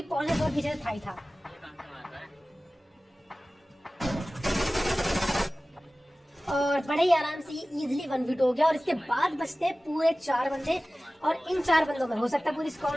पॉल ने बहुत पीछे था ही था। और बड़े ही आराम से ये इजीली 1v2 हो गया। और इसके बाद बचते हैं पूरे 4 बंदे, और इन 4 बंदों में हो सकता है पूरी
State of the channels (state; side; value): normal; both; correlation 0.97